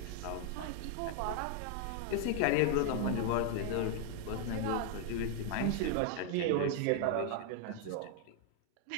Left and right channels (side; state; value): both; different; correlation 0.00